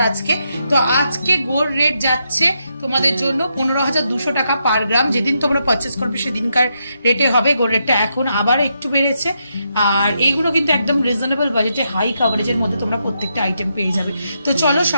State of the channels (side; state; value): both; inverted; correlation -0.81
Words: আজকে। তো আজকে গোল্ড রেট যাচ্ছে তোমাদের জন্য 15,200 টাকা পার গ্রাম। যেদিন তোমরা পারচেস করবে সেদিনকার রেটে হবে। গোল্ড রেটটা এখন আবার একটু বেড়েছে, আর এইগুলো কিন্তু একদম রিজনেবল বাজেটে হাই কভারেজের মধ্যে তোমরা প্রত্যেকটা আইটেম পেয়ে যাবে। তো চলো